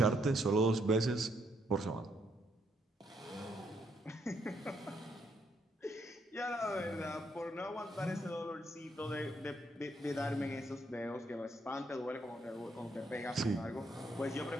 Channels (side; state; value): both; normal; correlation 0.74